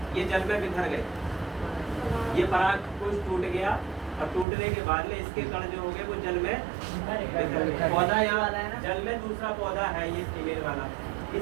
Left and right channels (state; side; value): drops out; left; at 4.5 s